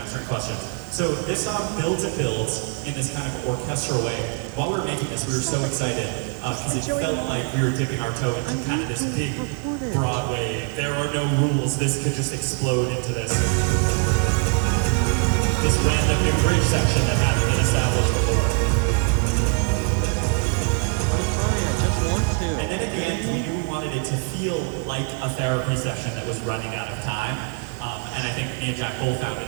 questions. So this song builds and builds in this kind of orchestral way. While we were making this, we were so excited because it felt like we were dipping our toe into kind of this big Broadway, there are no rules, this could just explode into this random new bridge section that hadn't been established before. And then at the end, we knew we wanted it to feel like a therapy session that was running out of time. And I think me and Jack both found in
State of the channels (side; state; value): left; quieter; 38.0 dB